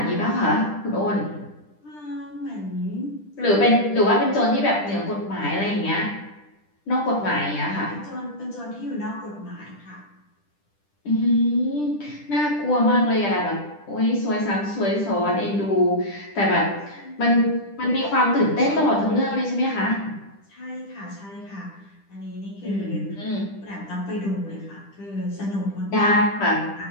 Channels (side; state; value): right; late; 10 ms